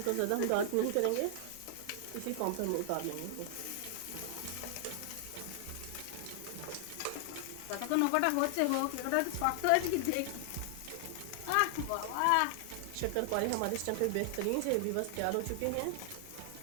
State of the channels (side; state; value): both; different; correlation 0.00